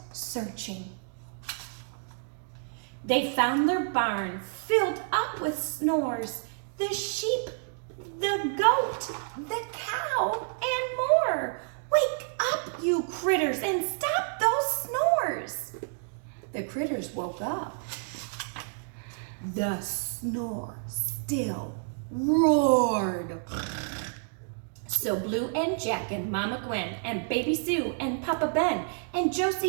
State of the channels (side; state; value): left; silent; digital silence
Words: searching. They found their barn filled up with snores. The sheep, the goat, the cow, and more. "Wake up, you critters, and stop those snores." The critters woke up. The snore still roared. So Blue and Jack and Mama Gwen and Baby Sue and Papa Ben and